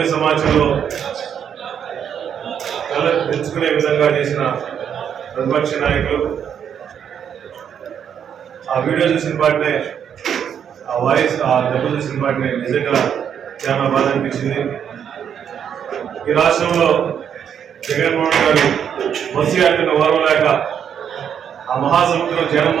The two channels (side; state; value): left; quieter; 8.3 dB